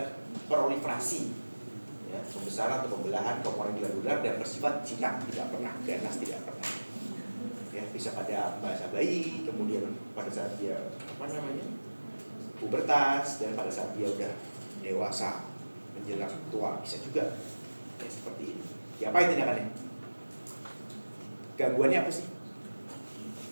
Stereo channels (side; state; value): both; inverted; correlation -1.00